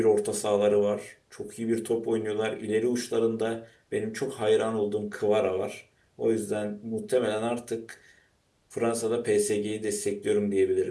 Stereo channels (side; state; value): both; identical; correlation 1.00